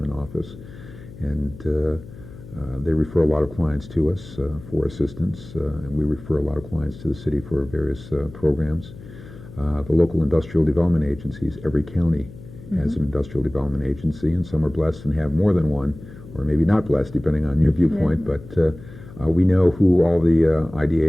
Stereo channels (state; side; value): noise; left; hum, 17 dB below the sound